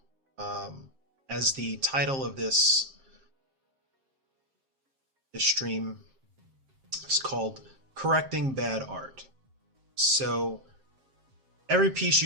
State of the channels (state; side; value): late; left; 7.5 ms